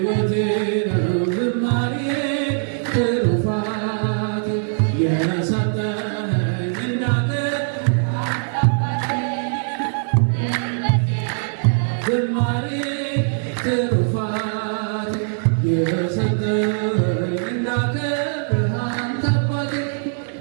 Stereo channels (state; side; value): silent; left; digital silence